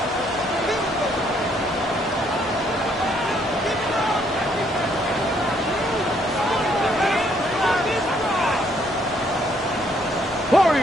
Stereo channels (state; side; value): normal; both; correlation 0.68